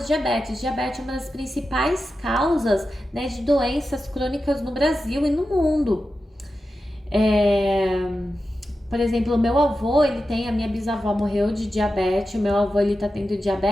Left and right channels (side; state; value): both; normal; correlation 0.91